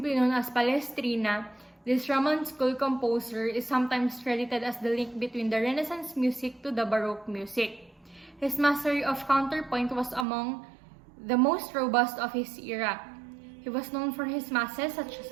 known as Palestrina, this Roman school composer is sometimes credited as the link between the Renaissance music to the Baroque music. His mastery of counterpoint was among the most robust of his era. He was known for his masses such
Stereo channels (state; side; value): drops out; left; at 10.2 s